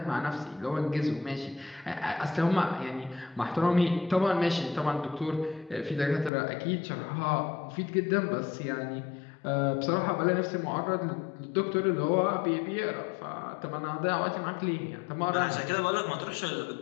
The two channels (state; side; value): drops out; right; at 6.3 s